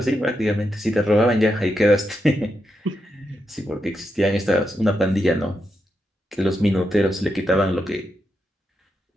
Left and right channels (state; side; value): normal; both; correlation 0.84